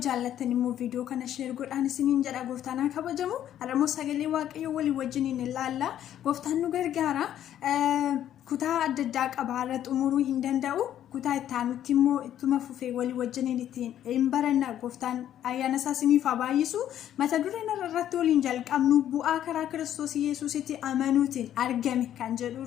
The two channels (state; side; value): quieter; right; 11.1 dB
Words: jaallattan immoo viidiyoo kana share godhaan isiniin jedha Gooftaan haa kabajamu. Har'ammoo sagalee Waaqayyoo walii wajjiniin ilaalla. Gooftaan nu gargaara. Kutaa adda addaa qaba har'a xumuruu hin danda'u. Kutaa itti aanutti immoo ittuma fufee walii wajjiniin ittiin hin baranna. Gooftaan ayyaana isaa isiniif haa baay'isu. Mata dureen irratti waliin jalqabnu bu'aa karaa Kiristoos Yesuusitti amanuutiin argame kan jedhu